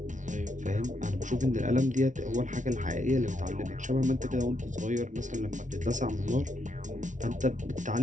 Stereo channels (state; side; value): late; left; 0.37 ms